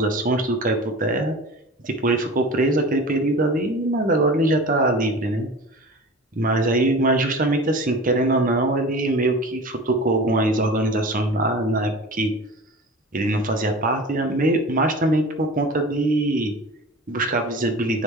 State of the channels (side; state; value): both; normal; correlation 0.36